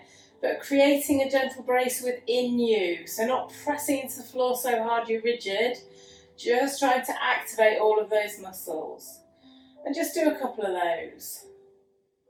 but creating a gentle brace within you. So not pressing into the floor so hard you're rigid, just trying to activate all of those muscles. And just do a couple of those.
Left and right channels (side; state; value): both; identical; correlation 1.00